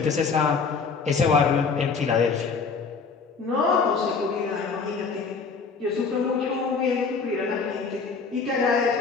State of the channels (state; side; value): quieter; right; 5.1 dB